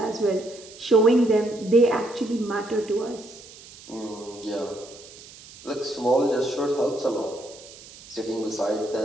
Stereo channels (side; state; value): right; noise; hiss, 19 dB below the sound